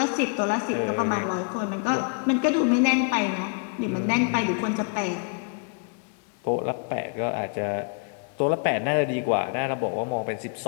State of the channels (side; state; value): right; quieter; 39.0 dB